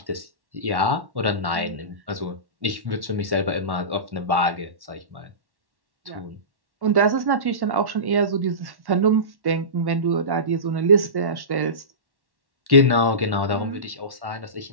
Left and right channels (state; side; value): late; left; 1.1 ms